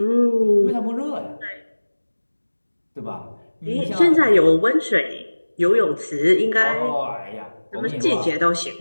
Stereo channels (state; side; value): inverted; both; correlation -1.00